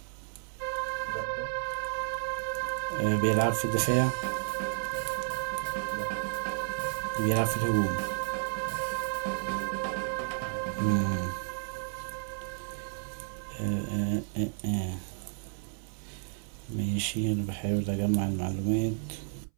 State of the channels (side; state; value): left; silent; 57 dB below the other